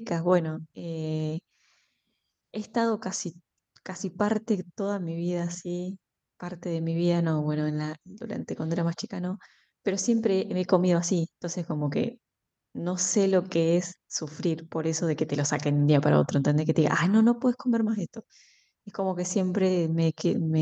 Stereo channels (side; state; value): both; identical; correlation 1.00